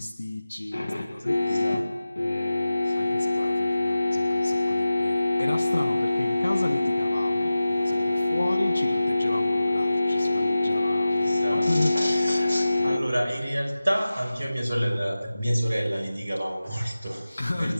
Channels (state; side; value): inverted; both; correlation -0.95